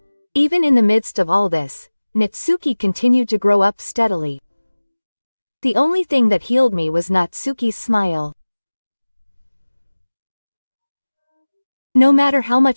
Even in the midst of all this, Natsuki continued to grow up steadily. The only thing that healed me was Natsuki's smile. No matter how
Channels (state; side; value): inverted; both; correlation -1.00